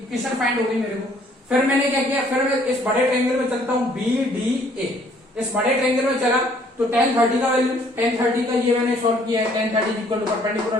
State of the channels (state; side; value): normal; both; correlation 0.61